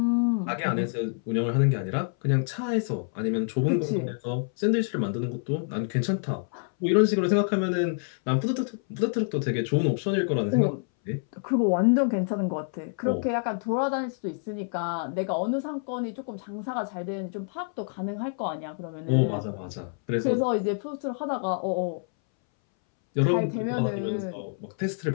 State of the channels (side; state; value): right; silent; 60 dB below the other